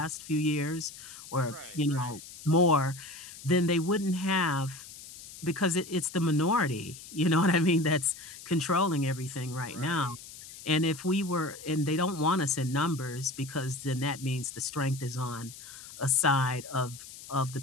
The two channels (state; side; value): noise; left; hiss, 15 dB below the sound